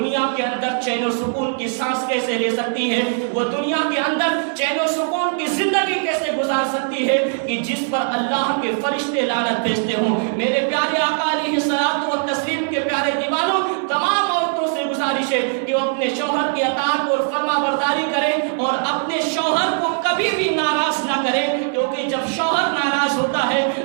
کے اندر چین و سکون کی سانس کیسے لے سکتی ہے, وہ دنیا کے اندر چین و سکون کی زندگی کیسے گزار سکتی ہے کہ جس پر اللہ کے فرشتے لعنت بھیجتے ہوں. میرے پیارے آقا علیہ الصلوۃ والتسلیم کے پیارے دیوانوں, تمام عورتوں سے گزارش ہے کہ وہ اپنے شوہر کی اطاعت اور فرما برداری کریں اور اپنے شوہر کو کبھی بھی ناراض نہ کریں, کیونکہ جب شوہر ناراض ہوتا ہے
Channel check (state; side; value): silent; left; 65 dB below the other